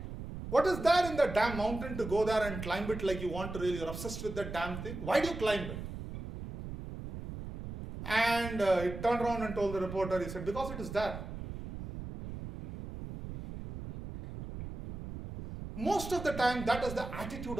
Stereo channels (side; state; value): right; noise; rumble, 9 dB below the sound